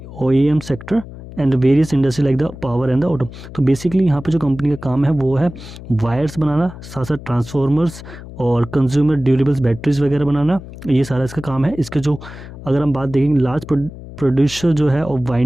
OEM sector and various industry like the power and the auto. तो बेसिकली यहाँ पे जो कंपनी का काम है वो है वायर्स बनाना, साथ साथ ट्रांसफॉर्मर्स और कंज्यूमर ड्यूरेबल्स बैटरीज वगैरह बनाना, ये सारा इसका काम है। इसके जो अगर हम बात देखेंगे लार्ज प्रोड्यूसर जो है और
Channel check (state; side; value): noise; left; hum, 14 dB below the sound